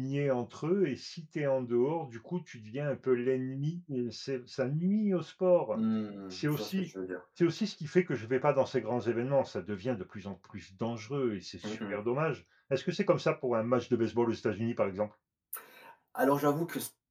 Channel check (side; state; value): both; identical; correlation 1.00